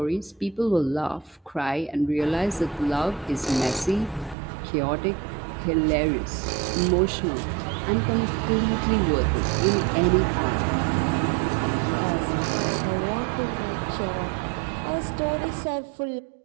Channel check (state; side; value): drops out; left; at 4.4 s